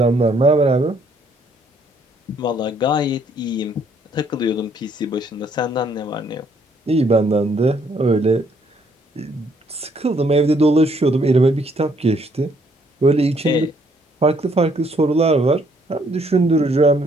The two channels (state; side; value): normal; both; correlation 0.67